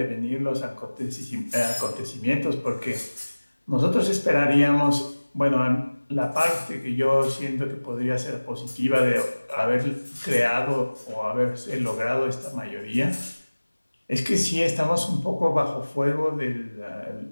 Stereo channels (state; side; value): inverted; both; correlation -1.00